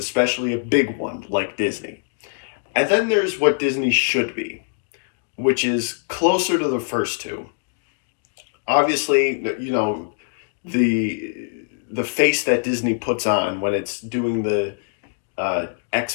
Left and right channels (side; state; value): right; silent; digital silence